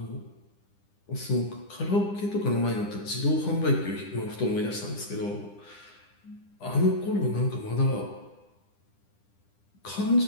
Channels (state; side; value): late; right; 10 ms